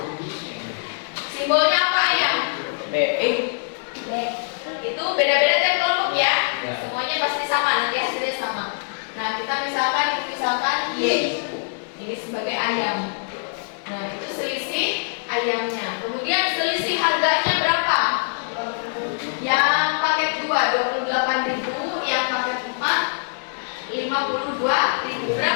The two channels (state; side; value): silent; right; 63 dB below the other